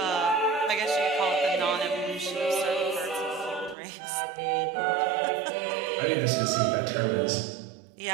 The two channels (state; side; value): drops out; left; at 3.8 s